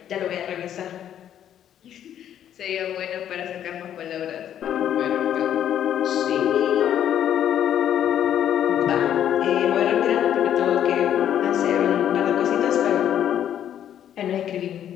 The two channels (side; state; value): right; quieter; 10.3 dB